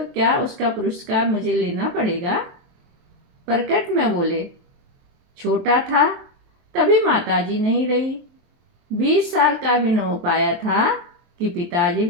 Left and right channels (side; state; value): left; late; 23 ms